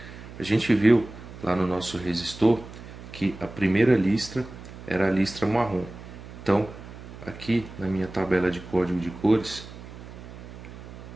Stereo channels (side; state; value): right; noise; hum, 14 dB below the sound